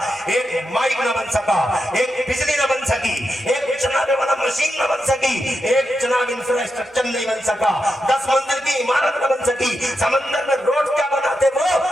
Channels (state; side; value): normal; both; correlation 0.86